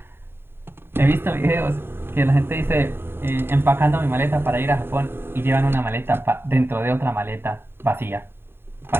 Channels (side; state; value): left; late; 0.11 ms